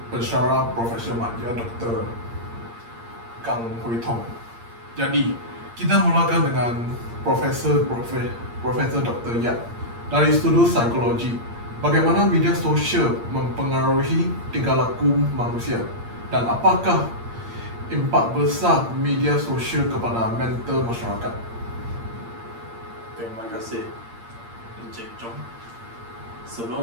pensyarah profesional dia, Dr. Kang Hui Tong. Jadi, kita mulakan dengan Profesor Dr. Yap dari studi psikologi. Bagaimana media sosial mempengaruhi tingkah laku manusia dan apakah impak besar media sosial kepada mental masyarakat? Terima kasih, Encik Chong.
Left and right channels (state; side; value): late; left; 8.7 ms